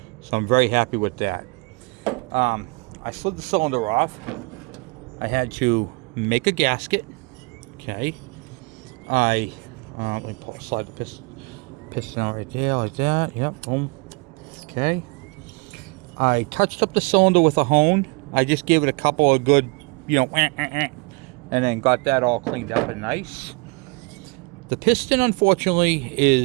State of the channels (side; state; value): left; quieter; 29.4 dB